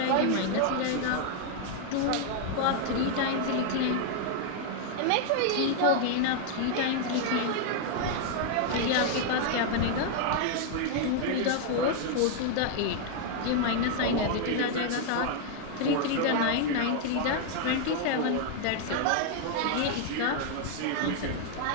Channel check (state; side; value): different; both; correlation 0.00